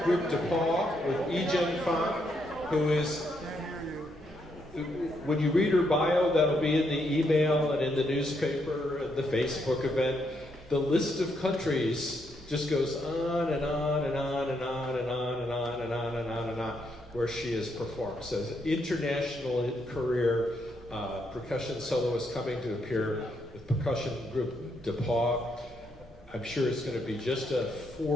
group DePaul with Ejen Fong, who is, when you read her bio, that'll be in the email and in the newspaper and the Facebook event. The list of countries just goes on and on and on and on and on and on and on and on and on where she has performed. So international career percussion soloist coming to appear with percussion group DePaul. I'm sure it's going to be just a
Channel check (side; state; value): both; normal; correlation 0.77